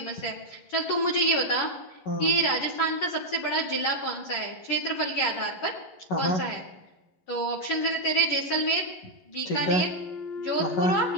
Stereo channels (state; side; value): late; right; 11 ms